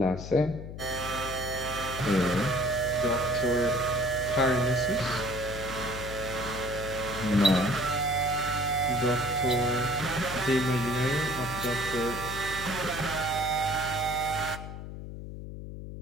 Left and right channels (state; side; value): noise; left; hum, 9 dB below the sound